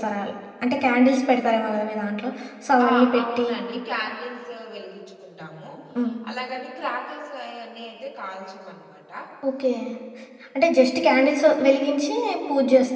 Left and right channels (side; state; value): both; identical; correlation 1.00